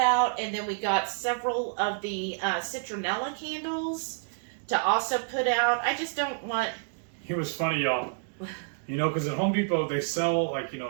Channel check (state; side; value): silent; left; digital silence